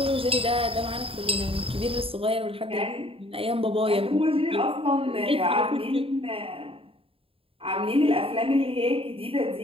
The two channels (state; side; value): late; left; 0.27 ms